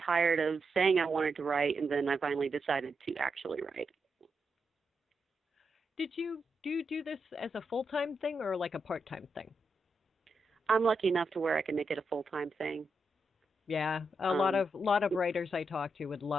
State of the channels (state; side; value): normal; both; correlation 0.84